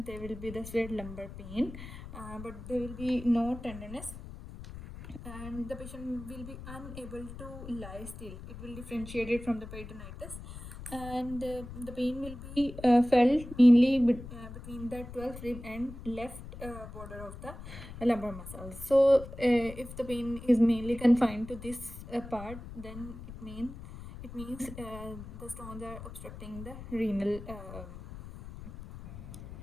there will be the severe lumbar pain, but there will be no tenderness, and the patient will be unable to lie still. It will differentiate it from the peritonitis, and the pain will be felt mainly between the 12th rib and left border of the lumbar muscles. So if the pain is mainly confined to this part, then it means the stones are obstructing the renal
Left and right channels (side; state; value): left; noise; rumble, 12 dB below the sound